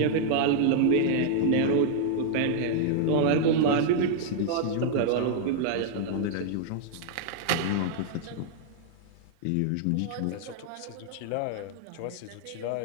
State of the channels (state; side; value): different; both; correlation -0.01